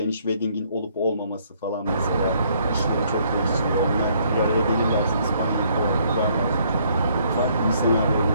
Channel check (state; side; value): inverted; both; correlation -0.66